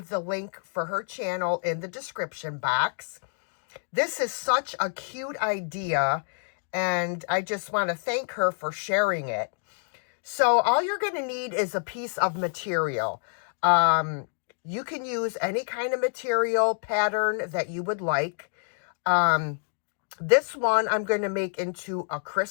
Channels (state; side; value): silent; right; digital silence